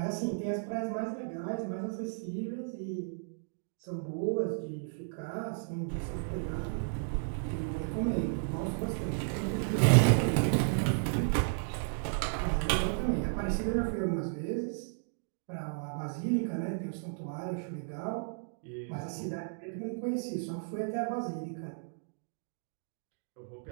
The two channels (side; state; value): left; silent; digital silence